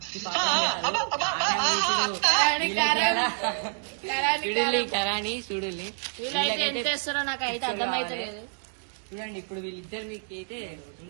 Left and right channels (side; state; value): left; silent; 60 dB below the other